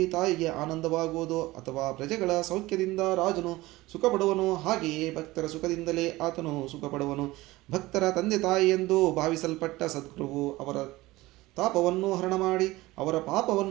ತಾಯಿಗೆ ಆನಂದವಾಗುವುದು ಅಥವಾ ಪ್ರಜೆಗಳ ಸೌಖ್ಯದಿಂದ ರಾಜನು ಸುಖಪಡುವನು, ಹಾಗೆಯೇ ಭಕ್ತರ ಸುಖದಿಂದಲೇ ಆತನು ಸುಖಪಡುವನು. ಭಕ್ತರ ತಂದೆ ತಾಯಿ ಎಂದು ಭಾವಿಸಲ್ಪಟ್ಟ ಸದ್ಗುರುವು ಅವರ ತಾಪವನ್ನು ಹರಣ ಮಾಡಿ ಅವರ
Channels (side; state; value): left; quieter; 19.2 dB